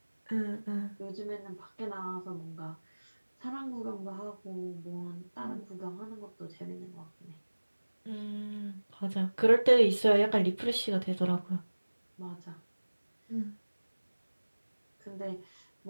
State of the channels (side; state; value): both; inverted; correlation -1.00